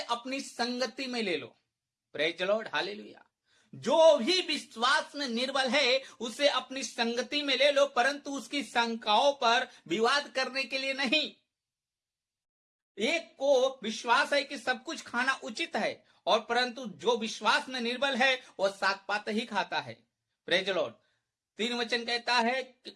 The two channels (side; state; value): both; identical; correlation 1.00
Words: संगति में ले लो। Praise the Lord, hallelujah. जो भी विश्वास में निर्बल है उसे अपनी संगति में ले लो, परंतु उसकी शंकाओं पर विवाद करने के लिए नहीं। एक को विश्वास है कि सब कुछ खाना उचित है, और परंतु जो विश्वास में निर्बल है वो साग पात ही खाता है। Praise the Lord. 3 वचन कहता है,